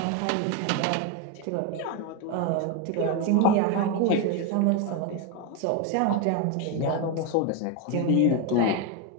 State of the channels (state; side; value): different; both; correlation 0.02